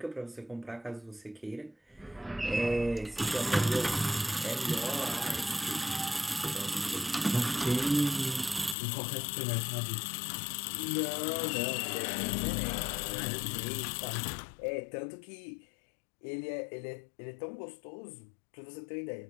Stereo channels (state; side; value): drops out; right; at 8.8 s